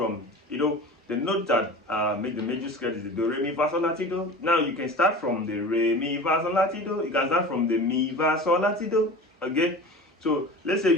you know, the note that make the major scale is the do, re, mi, fa, sol, la, ti, do. Now you can start from the re, mi, fa, sol, la, ti, do. You can start from the mi, fa, sol, la, ti, do. Okay, so let's say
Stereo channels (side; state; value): both; normal; correlation 0.35